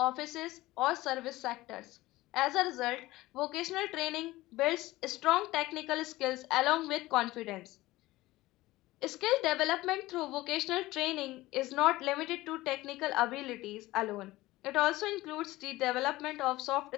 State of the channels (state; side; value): quieter; right; 18.2 dB